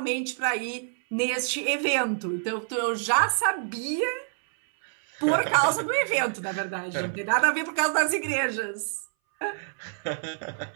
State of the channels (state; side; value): silent; left; 60 dB below the other